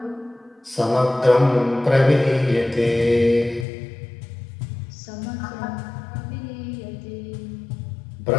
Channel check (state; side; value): drops out; right; at 3.7 s